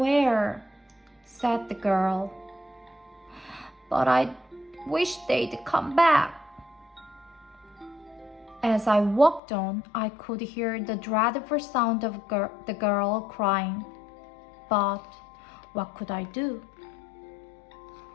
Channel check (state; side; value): drops out; right; at 9.4 s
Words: said the girl. But I wish they'd come back. As I walked on, I could hear the dreadful sound of the girl crying. But what could I do?